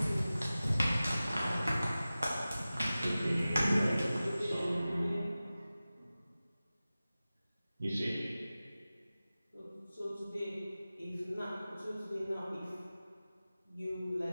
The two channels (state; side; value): inverted; both; correlation -0.96